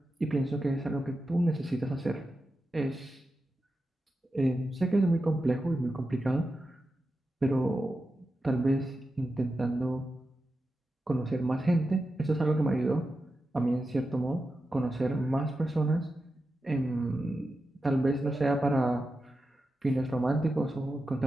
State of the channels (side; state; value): both; normal; correlation 0.91